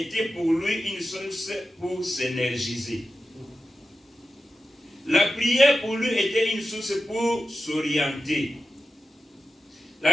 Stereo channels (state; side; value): normal; both; correlation 0.92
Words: pour lui une source pour s'énergiser. La prière pour lui était une source pour s'orienter.